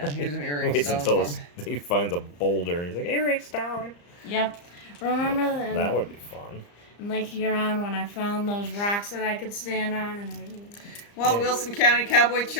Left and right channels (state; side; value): late; right; 34 ms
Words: here's an earring Waits stone. until for me. he finds a boulder and he's like, earring stone. Yep. Remember That would be fun. in Lake Huron when I found those rocks that I could stand on and Well, Yeah. Wilson County Cowboy